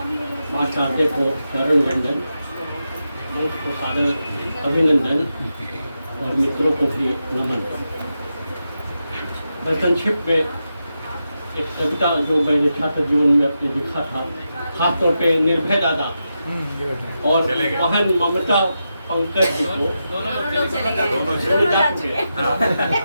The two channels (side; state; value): both; inverted; correlation -0.88